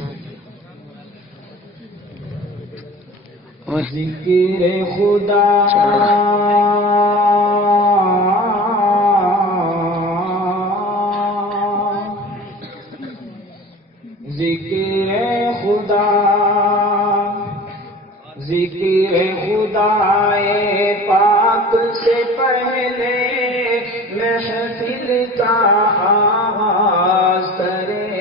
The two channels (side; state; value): both; normal; correlation 0.39